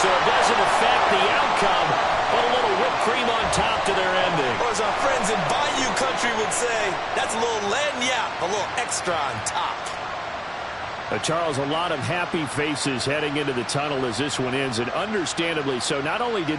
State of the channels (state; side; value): identical; both; correlation 1.00